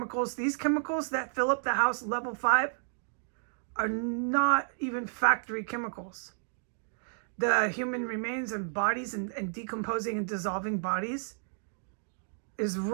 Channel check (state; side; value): silent; left; digital silence